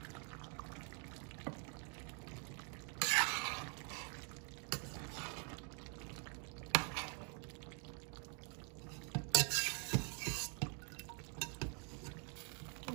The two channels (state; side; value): quieter; left; 38.6 dB